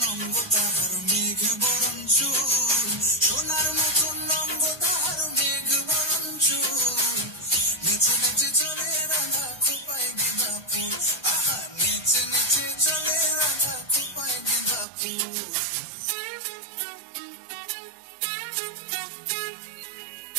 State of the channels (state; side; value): drops out; left; at 14.9 s